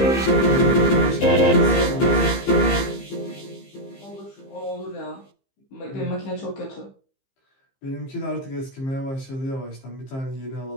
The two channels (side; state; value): right; late; 15 ms